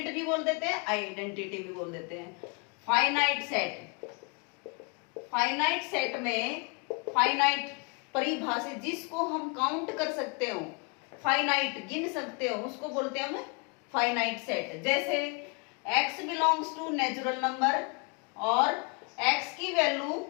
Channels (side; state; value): right; quieter; 32.2 dB